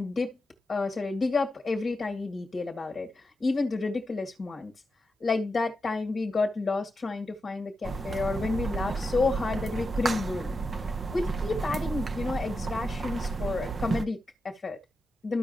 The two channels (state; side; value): normal; both; correlation 0.88